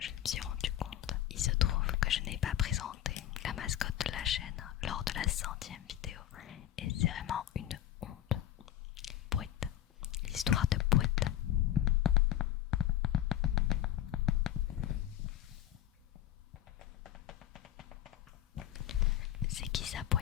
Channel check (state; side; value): quieter; right; 11.9 dB